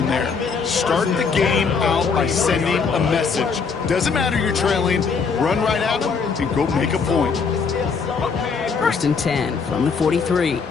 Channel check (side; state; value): right; quieter; 5.3 dB